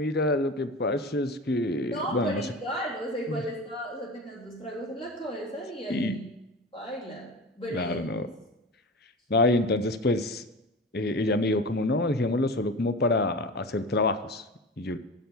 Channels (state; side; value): normal; both; correlation 0.31